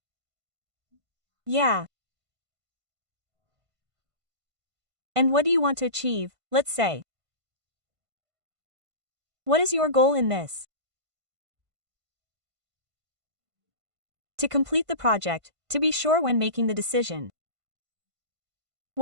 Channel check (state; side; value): late; left; 1.5 ms